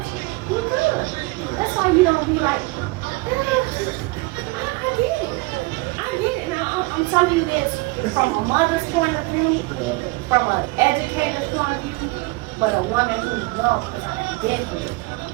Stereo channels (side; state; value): left; quieter; 24.1 dB